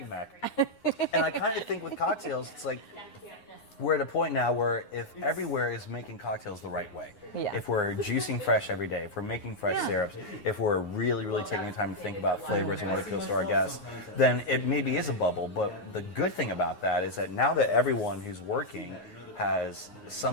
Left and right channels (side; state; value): right; late; 9.6 ms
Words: Mac. And I kind of think with cocktails, it's like, we're at a point now where if everywhere is making cocktails the right way, if we're juicing fresh every day, if we're making fresh syrups, if we're really, really taking the time to think about flavors and what appeals to our guests, then it maybe is a bubble. But the good thing about that is that now that everyone who's working has